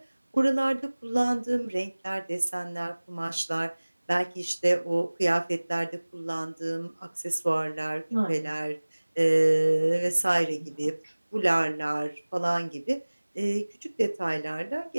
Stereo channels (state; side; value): inverted; both; correlation -1.00